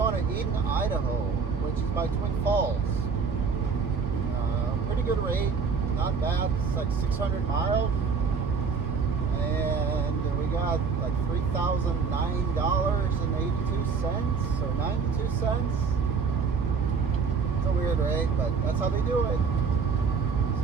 to Eden, Idaho, which is by Twin Falls. Pretty good rate, not bad. It's like 600 miles. And we got like $3,009.82 or 92 cents. It's a weird rate, but that's how they do it.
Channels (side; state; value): left; quieter; 5.5 dB